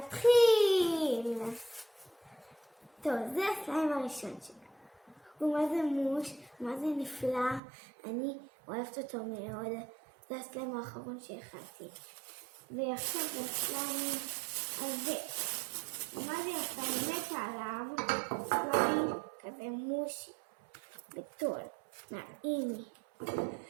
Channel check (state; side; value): drops out; left; at 7.6 s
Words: טוב, זה הסליים הראשון שלי. הוא מה זה מוש, מה זה נפלא, אני אוהבת אותו מאוד. זה הסליים האחרון שהכנתי. ועכשיו זה הסליים הזה. מה זה יפה, אני מתה עליו, סליים כזה מושי, בטול, נעים לי.